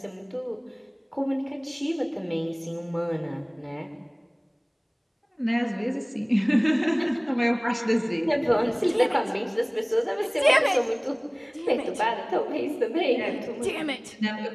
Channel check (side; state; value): both; identical; correlation 1.00